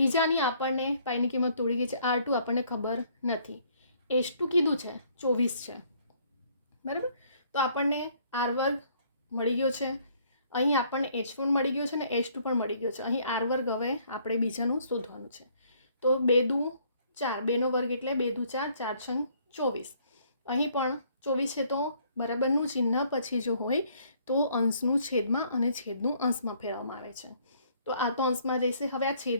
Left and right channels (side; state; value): both; inverted; correlation -0.63